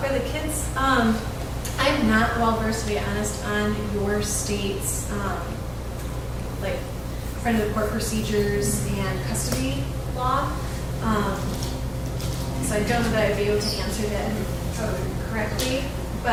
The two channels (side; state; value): both; identical; correlation 1.00